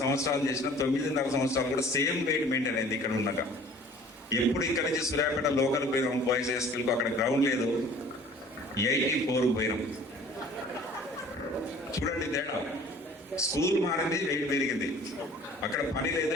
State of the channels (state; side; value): normal; both; correlation 0.50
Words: సంవత్సరాలు చేసిన 9.5 సంవత్సరాలు కూడా సేమ్ వెయిట్ మెయింటైన్ అయింది ఇక్కడ ఉన్నాక. ఎప్పుడు ఇక్కడ నుంచి సూర్యాపేట లోకల్ పోయినాం బాయ్స్ హై స్కూల్కు, అక్కడ గ్రౌండ్ లేదు, 84 పోయినాం. చూడండి తేడా. స్కూల్ మారింది, వెయిట్ పెరిగింది. అక్కడ పని లేదు,